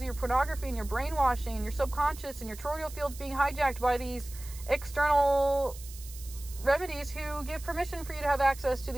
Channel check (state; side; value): noise; right; hiss, 16 dB below the sound